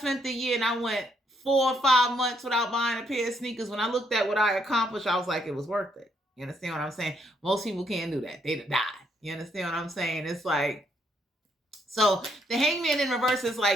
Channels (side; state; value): both; normal; correlation 0.73